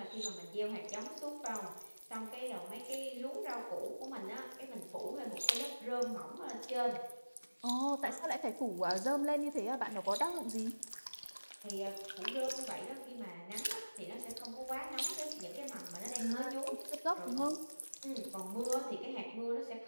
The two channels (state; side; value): inverted; both; correlation -1.00